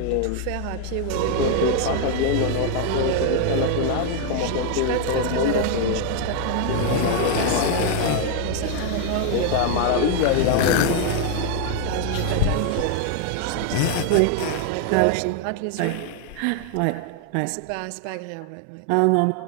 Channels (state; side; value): different; both; correlation 0.00